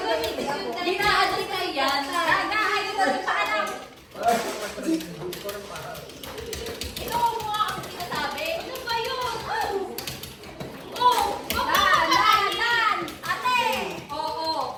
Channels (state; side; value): identical; both; correlation 1.00